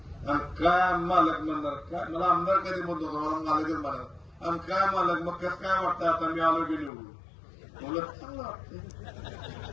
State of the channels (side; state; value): right; drops out; at 6.9 s